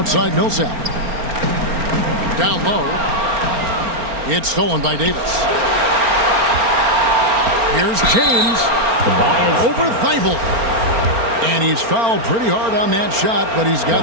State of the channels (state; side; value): late; left; 4.4 ms